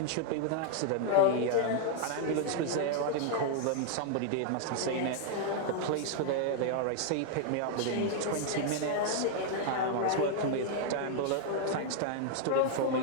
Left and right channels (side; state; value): both; different; correlation 0.00